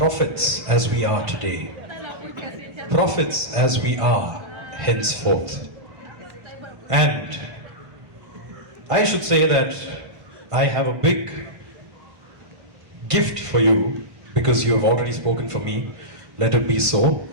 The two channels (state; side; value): late; left; 1.5 ms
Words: as we are today, prophets as we are henceforth. And I should say that I have a big gift for you, because you have already spoken for me. Let it be so.